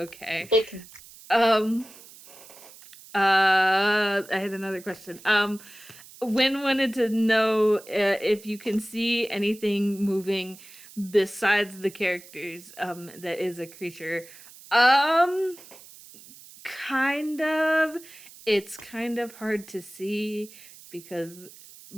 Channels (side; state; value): right; noise; hiss, 20 dB below the sound